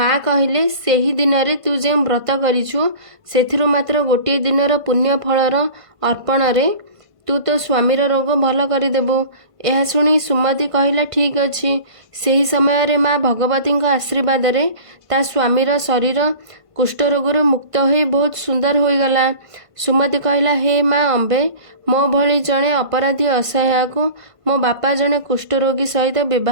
कहले, सेही दिन रे तू जे व्रत करिछु सेथिरु मात्र गोटे दिनर पुण्य फलर अर्पण रे ତୁ ତୋ ସ୍ୱାମୀର ରୋଗ ଭଲ କରିଦେବୁ। ଏହା ଶୁଣି ସୁମତି କହିଲା ଠିକ୍ ଅଛି। ସେହି ସମୟରେ ମା ଭଗବତୀଙ୍କ ଆଶୀର୍ବାଦରେ ତା ସ୍ୱାମୀର ଶରୀର କୁଷ୍ଠରୋଗରୁ ମୁକ୍ତ ହୋଇ ବହୁତ ସୁନ୍ଦର ହୋଇଗଲା। ସୁମତି କହିଲା, ହେ ମା ଅମ୍ବେ, ମୋ ଭଳି ଜଣେ ଅପରାଧୀ ଅସହାୟକୁ ମୋ ବାପା ଜଣେ କୁଷ୍ଠରୋଗୀ ସହିତ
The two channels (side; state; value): left; late; 1.5 ms